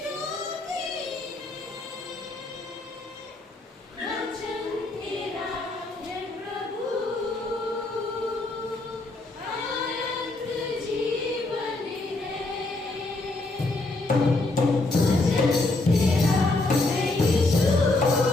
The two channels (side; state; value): right; quieter; 3.0 dB